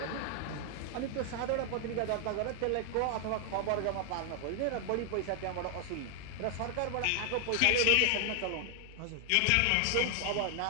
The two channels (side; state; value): both; different; correlation 0.00